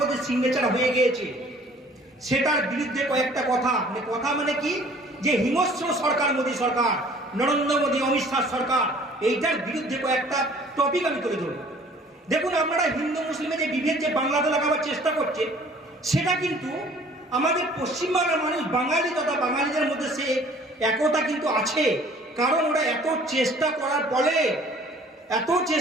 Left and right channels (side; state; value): both; normal; correlation 0.53